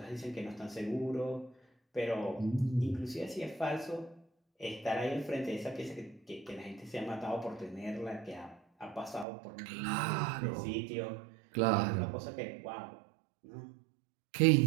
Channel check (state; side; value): drops out; left; at 9.2 s